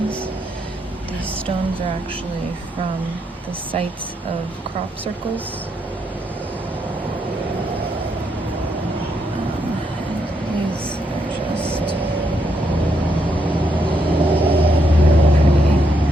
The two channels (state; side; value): normal; both; correlation 0.78